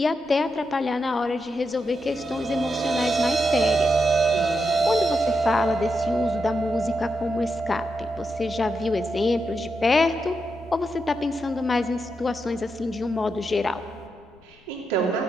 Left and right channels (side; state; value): left; noise; rumble, 30 dB below the sound